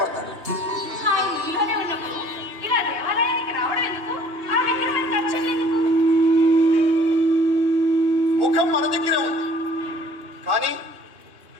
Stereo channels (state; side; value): late; left; 2.9 ms